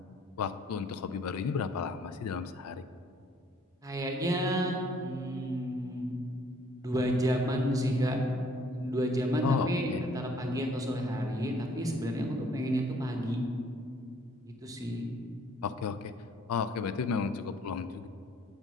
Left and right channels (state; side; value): normal; both; correlation 0.60